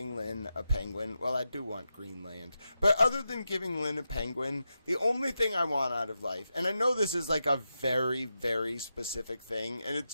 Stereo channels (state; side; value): inverted; both; correlation -0.88